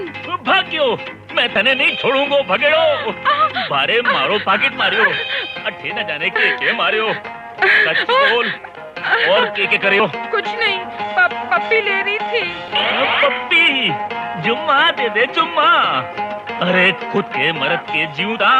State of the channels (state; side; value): identical; both; correlation 1.00